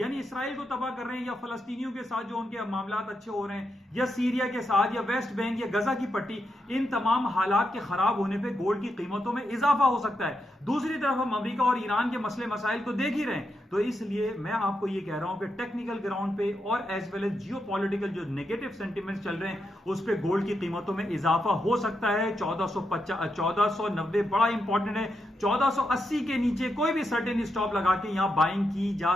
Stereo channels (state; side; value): normal; both; correlation 0.84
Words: इसराइल को तबाह कर रहे हैं, या फलस्तीनियों के साथ जो उनके मामलात अच्छे हो रहे हैं, या सीरिया के साथ, या वेस्ट बैंक, या गजा की पट्टी, इन तमाम हालात के खराब होने पे गोल्ड की कीमतों में इजाफा हो सकता है। दूसरी तरफ हम अमेरिका और ईरान के मसले मसाइल को देख ही रहे हैं। तो इसलिए मैं आपको ये कह रहा हूं कि टेक्निकल ग्राउंड पे और एज वेल एज जियोपॉलिटिकल जो नेगेटिव सेंटिमेंट्स चल रहे हैं उस पे गोल्ड की कीमतों में इजाफा हो सकता है। 1490 बड़ा इंपॉर्टेंट है। 1480 के नीचे कोई भी सर्टेन स्टॉप लगा के यहां बाइंग की जा